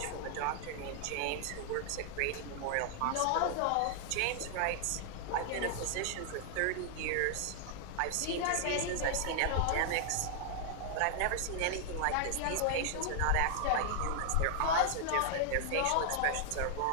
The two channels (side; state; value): both; different; correlation 0.00